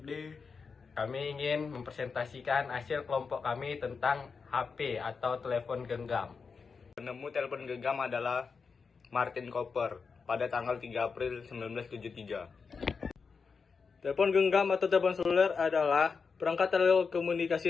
Kami ingin mempresentasikan hasil kelompok kami tentang HP atau telepon genggam. Penemu telepon genggam adalah Martin Cooper pada tanggal 3 April 1973. Telepon genggam atau telepon seluler adalah perangkat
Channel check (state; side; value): quieter; right; 5.2 dB